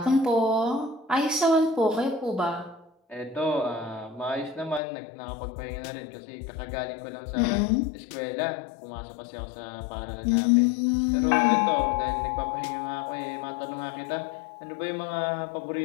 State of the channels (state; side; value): drops out; right; at 4.8 s